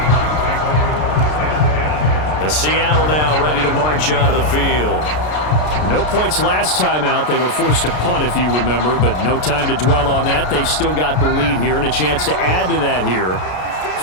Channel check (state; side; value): late; right; 33 ms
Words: Seattle now ready to march out of the field. No points last time out. They were forced to punt, if you remember, but no time to dwell on that. They've still got the lead here and a chance to add to that here.